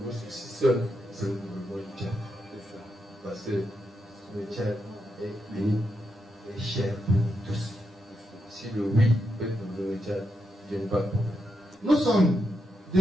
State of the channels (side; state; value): both; normal; correlation 0.84